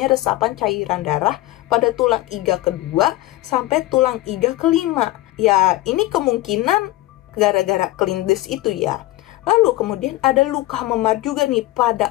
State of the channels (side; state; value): right; quieter; 17.4 dB